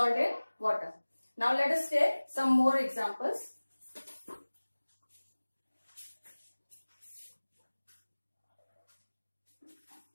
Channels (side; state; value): both; inverted; correlation -1.00